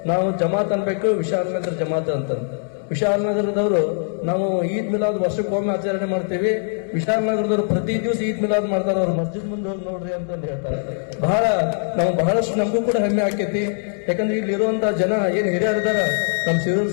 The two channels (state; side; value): silent; right; 65 dB below the other